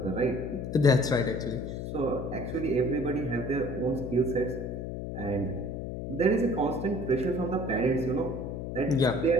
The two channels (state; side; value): noise; left; hum, 5 dB below the sound